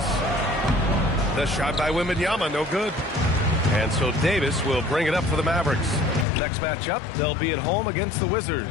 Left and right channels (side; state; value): right; drops out; at 6.2 s